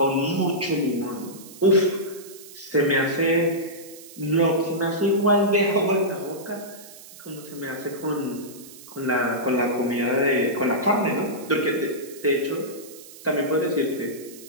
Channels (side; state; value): right; noise; hiss, 18 dB below the sound